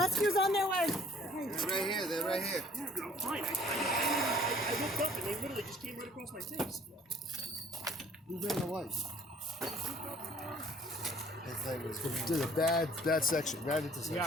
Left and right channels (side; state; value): both; normal; correlation 0.55